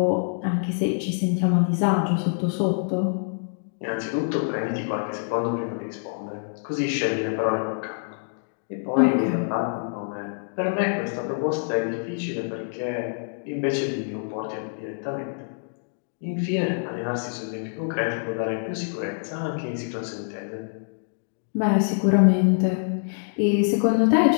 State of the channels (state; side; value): silent; right; digital silence